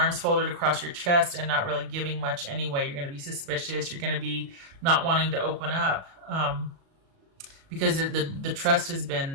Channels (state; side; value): late; left; 36 ms